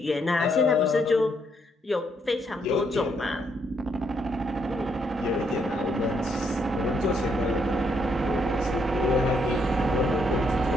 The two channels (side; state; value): both; normal; correlation 0.74